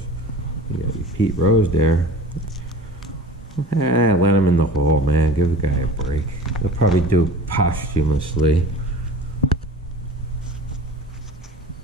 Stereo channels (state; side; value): normal; both; correlation 0.40